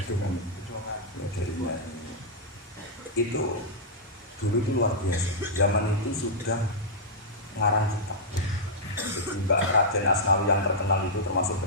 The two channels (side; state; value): both; normal; correlation -0.09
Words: kan jadinya itu dulu itu luar biasa. Zaman itu sudah ngarang kitab. Jadi Mbak Raden Asnawi yang terkenal itu termasuk